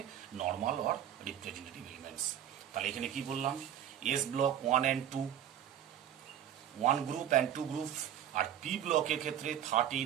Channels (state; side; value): quieter; left; 10.3 dB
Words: normal or representative elements. তাহলে এখানে কি বললাম? S block 1 and 2, 1 group and 2 group, R P ব্লকের ক্ষেত্রে